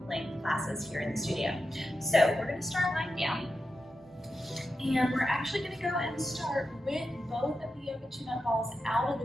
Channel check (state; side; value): normal; both; correlation 0.90